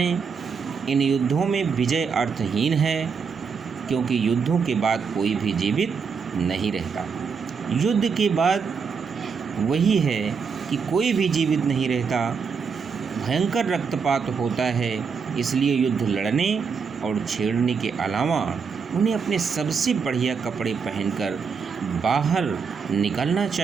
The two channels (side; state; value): left; quieter; 5.8 dB